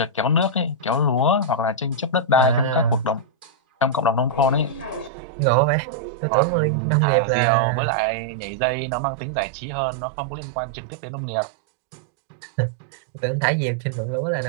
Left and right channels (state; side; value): drops out; left; at 5.1 s